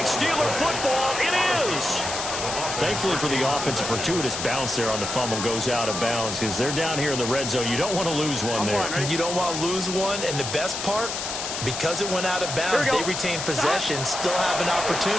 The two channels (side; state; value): left; noise; hiss, 5 dB below the sound